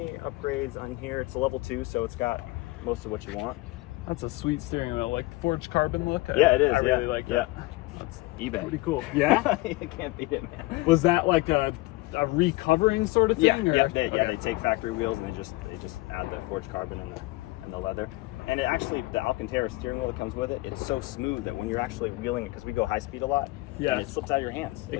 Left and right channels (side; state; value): right; quieter; 21.2 dB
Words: upgrades on here. It's a level 2, so it's got most of what you want. That's a sweet steering wheel, like forged carbon look. Yeah, it is. I really like yeah. that. That's eBay. Pretty cool. Yeah? You can't beat it, man. Was that like a recovering sort of thing? Yeah, or? they take factory wheels and they just add the forged carbon and the leather. And it actually, the Alcantara steering wheel that comes with it, it's so smooth that when you're actually wheeling it, because we go high speed a lot, yeah, and it slips out of your hands. It